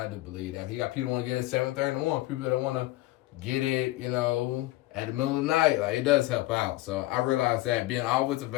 do believe that. You got people who want to get it at 7:30 in the morning, people that want to get it, at the middle of the night. Like, it does help out. So I realized that being always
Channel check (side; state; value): right; quieter; 17.7 dB